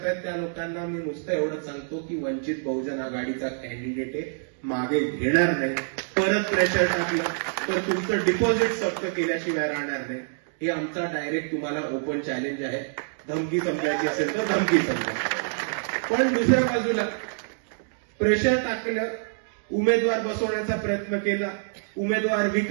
त्या लोकांना मी नुसतं एवढंच सांगतो की वंचित बहुजन आघाडीचा कॅन्डिडेट आहे, मागे घेणार नाही. परत प्रेशर टाकलं तर तुमचं डिपॉझिट जप्त केल्याशिवाय राहणार नाही. हे आमचा डायरेक्ट तुम्हाला ओपन चॅलेंज आहे. धमकी समजायची असेल तर धमकी समजा. पण दुसऱ्या बाजूला प्रेशर टाकलं, उमेदवार बसवण्याचा प्रयत्न केला, उमेदवार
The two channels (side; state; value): left; silent; digital silence